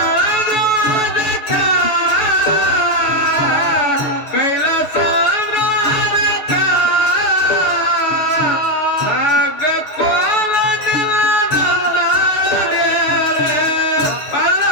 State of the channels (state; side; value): late; right; 6.5 ms